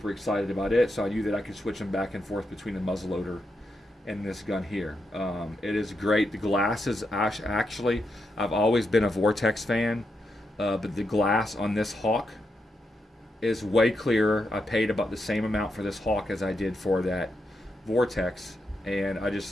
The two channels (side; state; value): both; normal; correlation 0.84